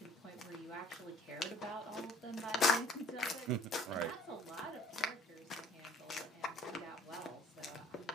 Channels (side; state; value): both; normal; correlation 0.52